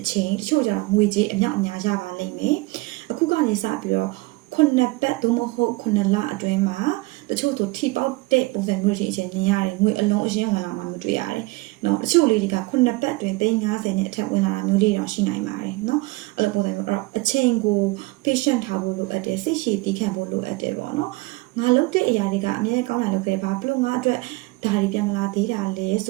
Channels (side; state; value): left; quieter; 22.5 dB